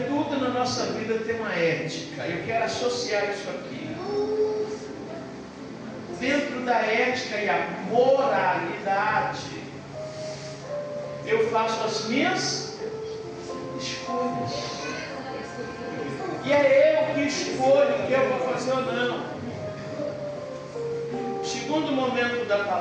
tudo na nossa vida tem uma ética. Eu quero associar isso aqui. Dentro da ética e a moralidade, eu faço as minhas escolhas. E é eu que escolho o que eu vou fazer ou não. Segundo momento da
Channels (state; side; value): identical; both; correlation 1.00